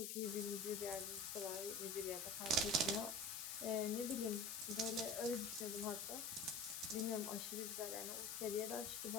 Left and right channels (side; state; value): left; noise; hiss, 3 dB below the sound